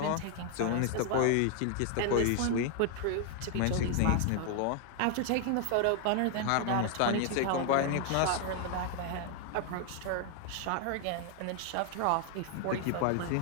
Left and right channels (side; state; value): both; different; correlation 0.00